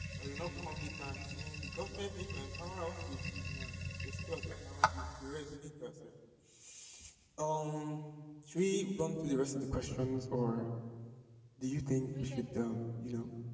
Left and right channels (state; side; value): identical; both; correlation 1.00